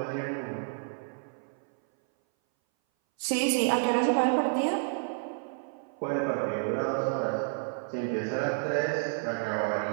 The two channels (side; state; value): left; silent; 58 dB below the other